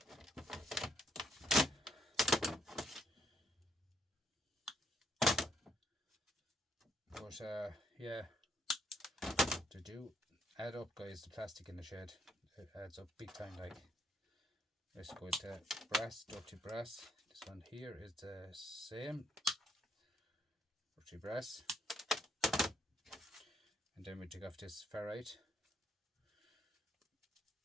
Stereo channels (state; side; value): normal; both; correlation 0.71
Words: But yeah, they do add up, guys. The plastic in the shed, it adds up big time. Like, let's go to brass, dirty brass. This one here is the same, dirty brass. And then we take off this ferrite